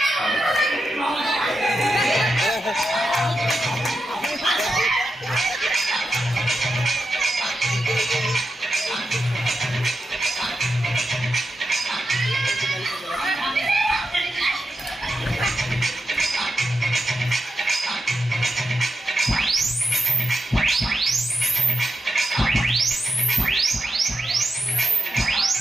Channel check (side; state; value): both; normal; correlation 0.88